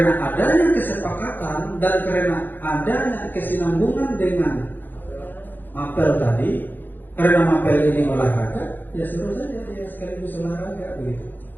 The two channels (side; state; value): right; late; 0.089 ms